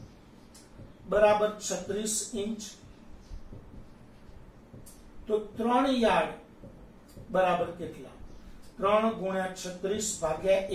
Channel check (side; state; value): both; identical; correlation 1.00